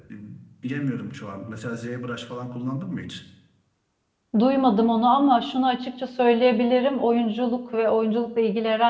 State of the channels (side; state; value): both; identical; correlation 1.00